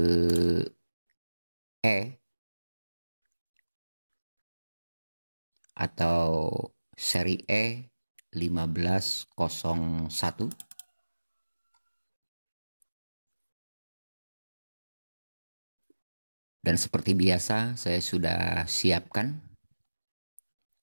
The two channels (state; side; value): inverted; both; correlation -1.00